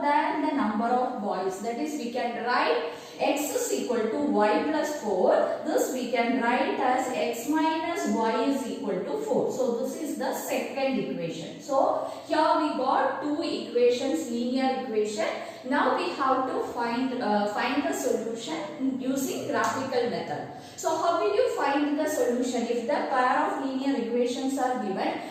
than the number of boys, that is we can write x is equal to y plus 4, this we can write as x minus y is equal to 4. So this is the second equation. So here we got two equations, linear equation. Now we have to find the solution using graphical method. So how will you find the solution? If the pair of linear equations are given,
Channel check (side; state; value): both; identical; correlation 1.00